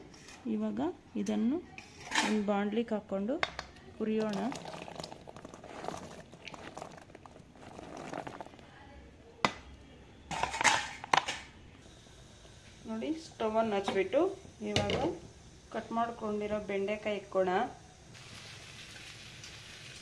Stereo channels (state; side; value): identical; both; correlation 1.00